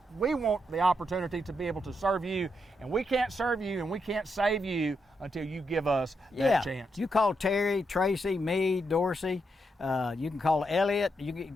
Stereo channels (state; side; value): normal; both; correlation 0.81